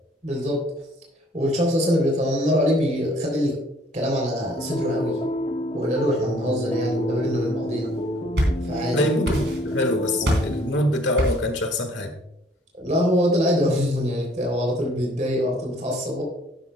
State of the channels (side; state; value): both; normal; correlation 0.59